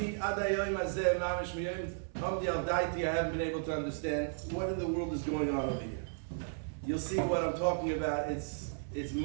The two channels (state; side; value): silent; left; 55 dB below the other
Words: haven't been able to understand what in the world is going on over here. You'll see what I'm talking about. It's